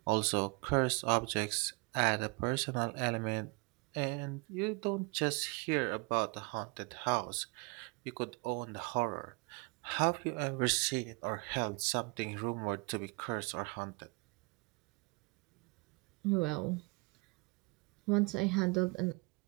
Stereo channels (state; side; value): quieter; left; 29.6 dB